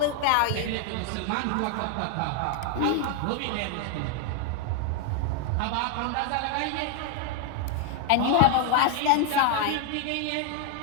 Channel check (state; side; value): different; both; correlation 0.01